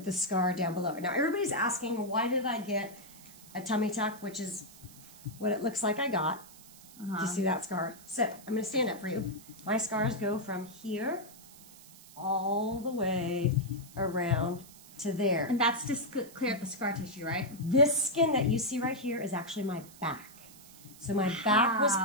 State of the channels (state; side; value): noise; right; hiss, 20 dB below the sound